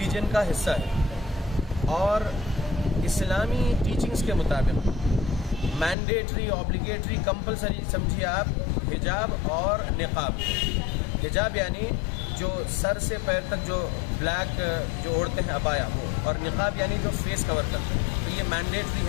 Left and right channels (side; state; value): right; drops out; at 6.0 s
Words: का हिस्सा है, और इस्लामी टीचिंग्स के मुताबिक मैंडेटरी, ऑब्लिगेटरी, कंपलसरी समझिए आप हिजाब और निकाब। हिजाब यानी जो सर से पैर तक जो ब्लैक जो ओढ़ते हैं अबाया वो, और निकाब यानी जो फेस कवर करते हैं। तो ये मैंडेटरी